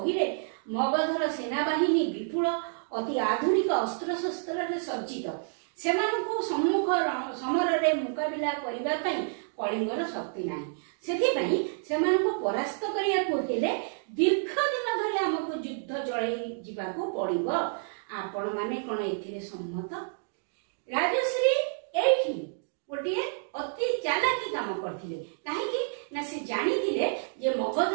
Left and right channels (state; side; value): silent; left; digital silence